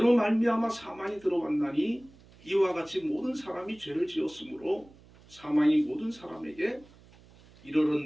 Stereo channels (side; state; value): right; noise; hum, 25 dB below the sound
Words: 말미암아 사망이 들어왔나니 이와 같이 모든 사람이 죄를 지었으므로 사망이 모든 사람에게